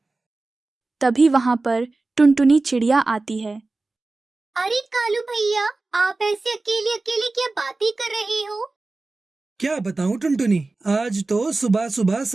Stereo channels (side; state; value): left; quieter; 3.4 dB